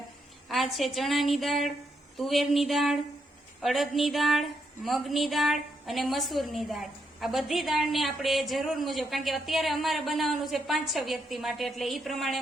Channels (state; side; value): normal; both; correlation 0.79